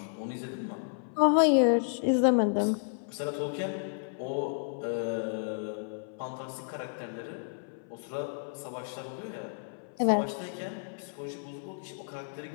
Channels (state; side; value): silent; right; 57 dB below the other